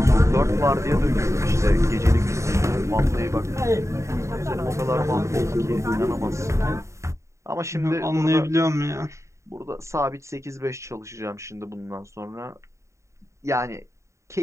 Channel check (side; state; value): left; late; 0.14 ms